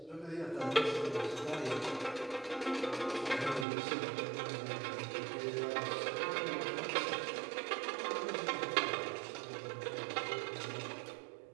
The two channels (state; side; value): drops out; left; at 3.7 s